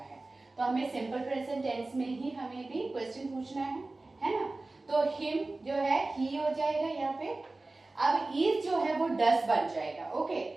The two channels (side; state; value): left; quieter; 3.1 dB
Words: तो हमें सिंपल प्रेजेंट टेंस में ही हमें भी क्वेश्चन पूछना है ना। तो हिम जो है ही हो जाएगा यहाँ पे, अब इज जो है वो डस बन जाएगा। ओके,